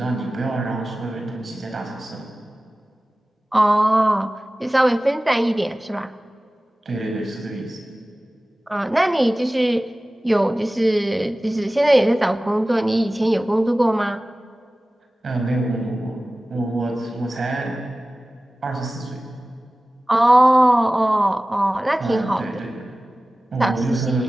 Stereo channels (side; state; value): both; normal; correlation 0.97